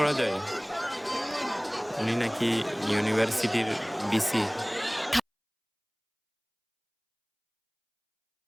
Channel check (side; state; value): both; identical; correlation 1.00